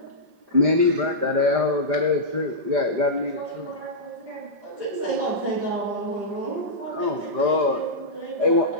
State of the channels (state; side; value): late; left; 5.0 ms